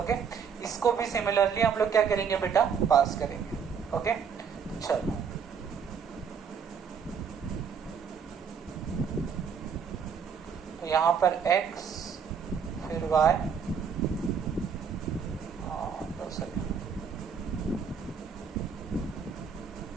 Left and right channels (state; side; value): quieter; left; 6.6 dB